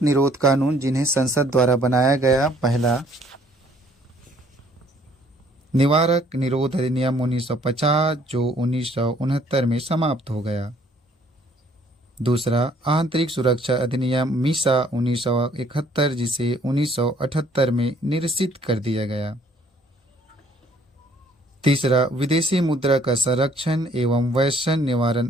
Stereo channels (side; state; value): both; normal; correlation 0.61